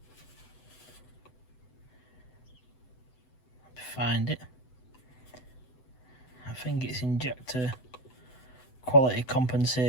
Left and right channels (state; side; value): late; right; 7.9 ms